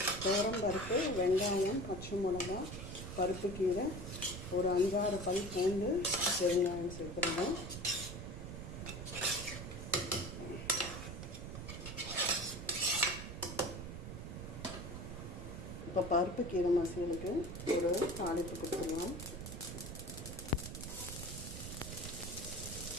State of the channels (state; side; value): noise; right; rumble, 8 dB below the sound